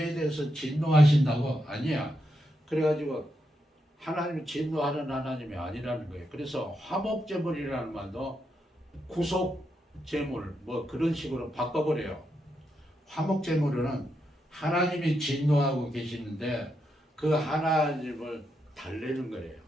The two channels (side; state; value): both; normal; correlation 0.83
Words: 대해서 진노하신다고? 아니야. 그래가지고 하나님이 진노하는 하나님이 아니라는 거예요. 그래서 화목제물이라는 말도 구속제물 뭐 그런 식으로 바꿔버려요. 화목제물은 하나님이 진노하고 계시는데 그 하나님을 달래는 거예요.